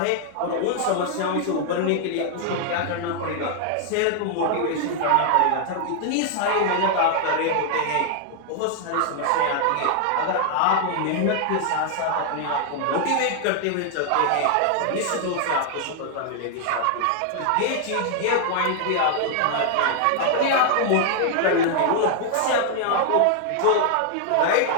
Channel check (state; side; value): different; both; correlation 0.00